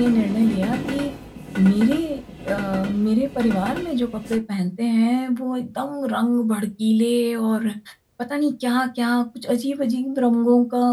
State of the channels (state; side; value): identical; both; correlation 1.00